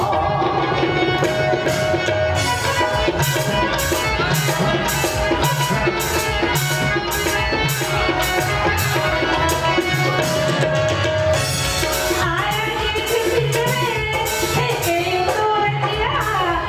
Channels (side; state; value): both; identical; correlation 1.00